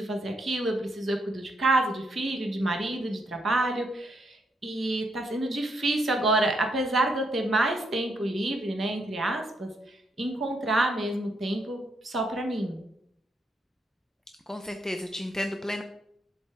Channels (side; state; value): both; normal; correlation 0.77